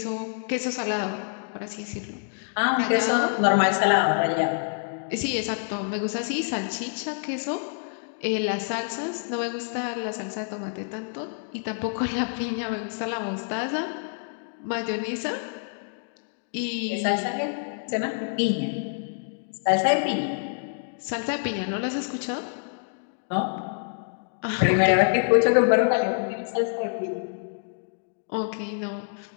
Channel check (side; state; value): right; silent; digital silence